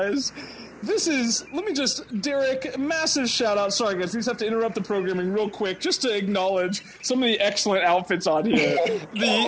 This is, Derek, massive shout out. Sorry guys, we just have to interrupt the programming real quick just to acknowledge some of the excellent outfits on here.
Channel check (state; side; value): identical; both; correlation 1.00